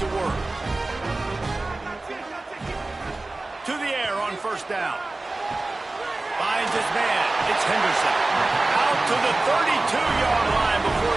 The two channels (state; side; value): quieter; left; 3.1 dB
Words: work. To the air on first down. Finds his man. It's Henderson. Out to the 32-yard line before